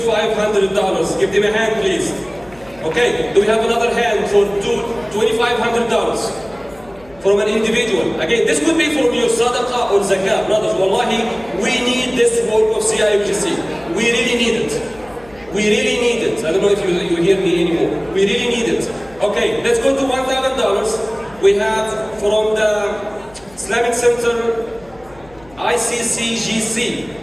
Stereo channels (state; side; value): noise; left; hum, 25 dB below the sound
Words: Give them a hand, please. Okay, do we have another hand for $2,500 from an individual? Again, this could be from your sadaqah or zakah. Brothers, wallahi, we need this work of CIOGC. We really need it. We really need it. I don't know if you hear me anymore. We really need it. Okay, let's go to $1,000. We have from the Islamic Center, ICCGC.